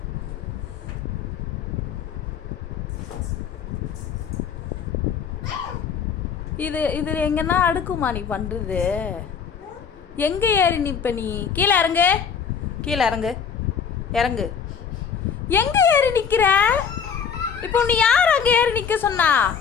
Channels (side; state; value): right; quieter; 6.9 dB